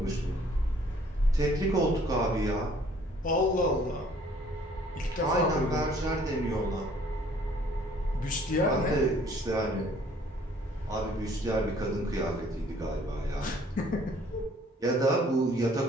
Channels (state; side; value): normal; both; correlation 0.58